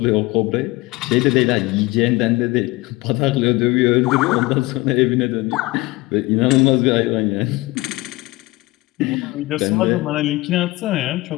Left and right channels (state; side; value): quieter; right; 21.4 dB